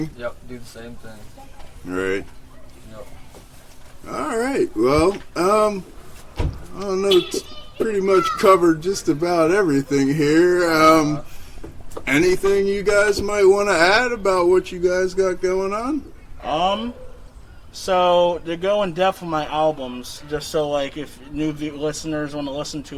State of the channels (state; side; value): identical; both; correlation 1.00